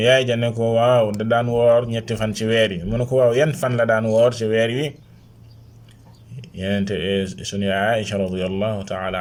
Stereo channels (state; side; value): identical; both; correlation 1.00